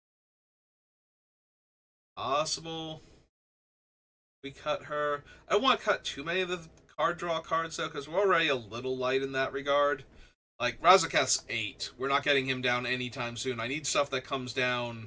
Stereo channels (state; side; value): identical; both; correlation 1.00